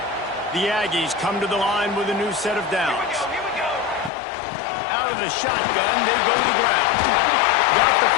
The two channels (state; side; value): drops out; right; at 4.1 s